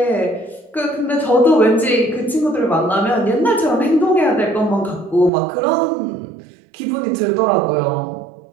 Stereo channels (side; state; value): left; drops out; at 5.3 s